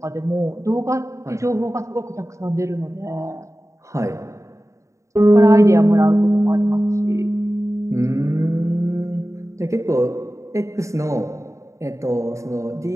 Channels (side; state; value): left; late; 0.15 ms